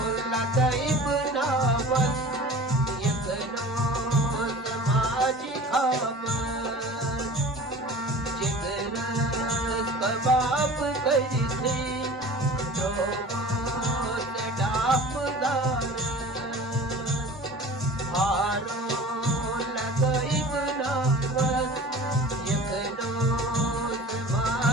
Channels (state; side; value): normal; both; correlation 0.40